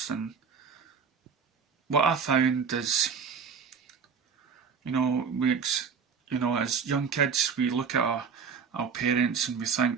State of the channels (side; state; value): left; quieter; 6.0 dB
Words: And what I found is, you know, as young kids, we look at our parents and we